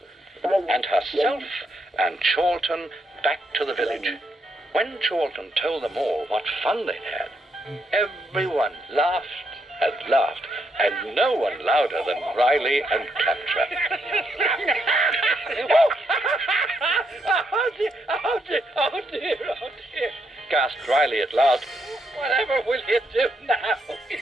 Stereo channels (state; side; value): normal; both; correlation 0.78